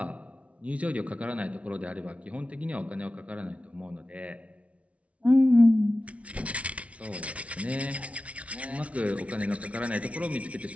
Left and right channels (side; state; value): left; late; 0.064 ms